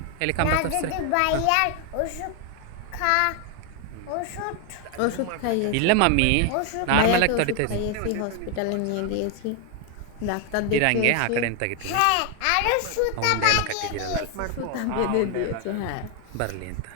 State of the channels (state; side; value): different; both; correlation 0.00